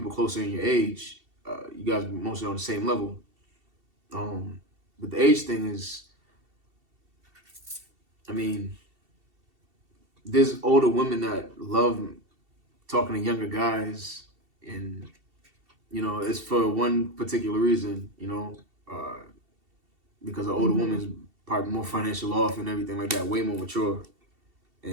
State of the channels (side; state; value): left; late; 2.7 ms